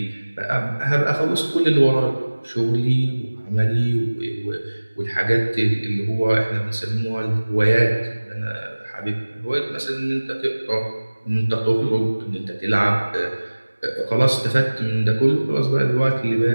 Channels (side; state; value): both; inverted; correlation -1.00